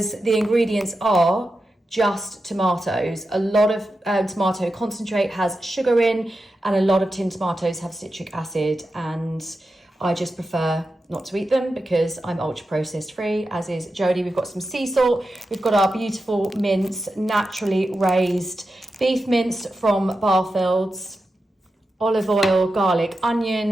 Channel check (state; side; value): normal; both; correlation 0.90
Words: the ingredients are just tomatoes. A lot of tomato concentrate has sugar in, and a lot of tinned tomatoes have citric acid, and I just prefer not to eat them because I'm ultra processed free, as is Jodie. We've got some sea salt. We've got our beautiful mince, naturally raised beef mince from Barfields. Olive oil, garlic,